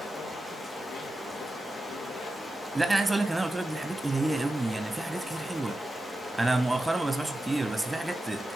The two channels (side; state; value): both; normal; correlation 0.91